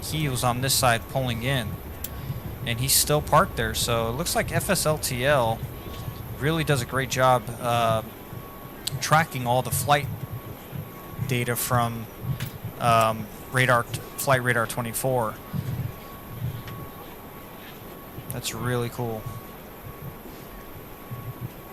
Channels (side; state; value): both; identical; correlation 1.00